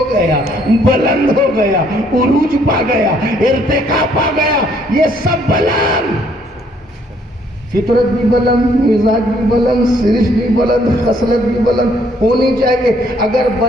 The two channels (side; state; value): both; normal; correlation 0.66